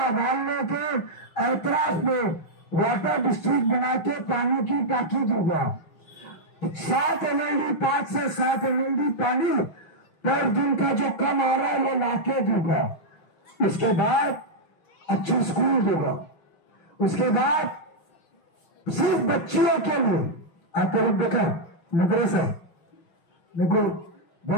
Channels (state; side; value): late; right; 5.9 ms